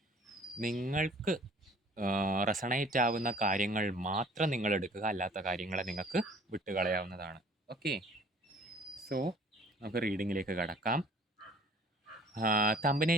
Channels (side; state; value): both; normal; correlation 0.53